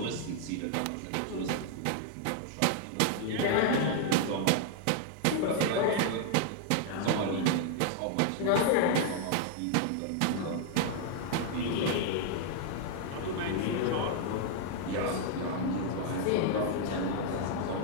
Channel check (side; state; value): both; different; correlation 0.00